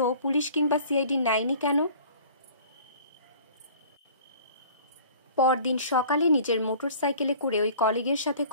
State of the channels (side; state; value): both; inverted; correlation -0.48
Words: পুলিশ কিংবা CID নেয়নি কেন? পরদিন সকালে নিজের মোটরসাইকেলে করে ওই কলিগের সাথে